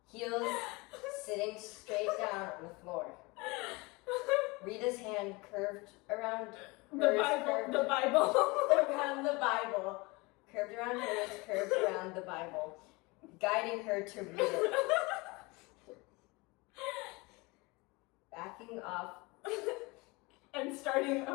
heels sitting straight down on the floor. Rita's hand curved around hers, Bible. around the Bible, curved around hers, curved around the Bible, guiding her to read it. Backing off And starting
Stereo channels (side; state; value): right; quieter; 25.2 dB